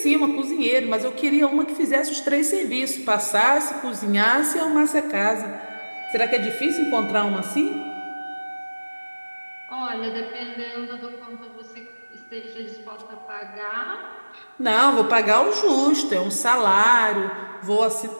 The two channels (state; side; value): inverted; both; correlation -1.00